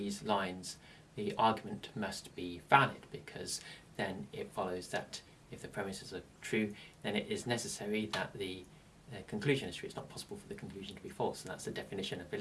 lines, the argument must be valid, because then it follows that if the premises are true, then it is necessary that the conclusion is true. It's not possible for the conclusion to be false, and that's the definition of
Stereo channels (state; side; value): identical; both; correlation 1.00